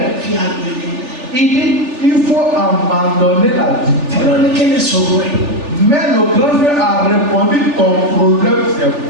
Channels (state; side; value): late; left; 3.4 ms